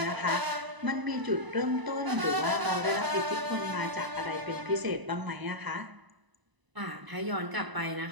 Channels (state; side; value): late; left; 1.0 ms